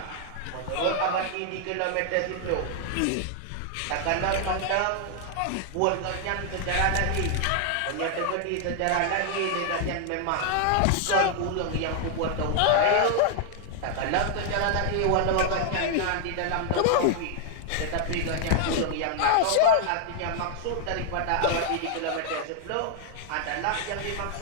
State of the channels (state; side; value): different; both; correlation 0.00